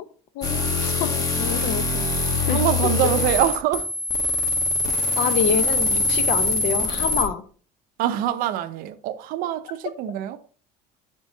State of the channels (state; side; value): normal; both; correlation 0.19